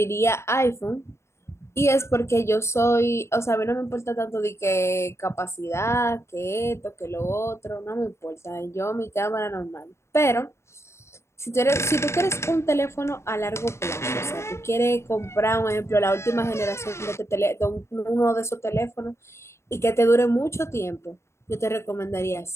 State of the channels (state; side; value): late; right; 0.13 ms